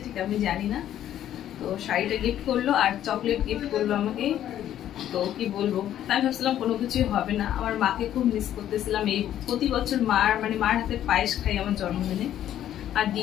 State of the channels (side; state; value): right; quieter; 11.4 dB